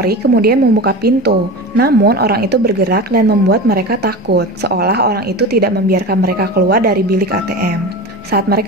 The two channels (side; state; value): both; normal; correlation 0.29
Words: kemudian membuka pintu, namun orang itu bergerak dan membuat mereka takut, seolah orang itu tidak membiarkan mereka keluar dari bilik ATM. Saat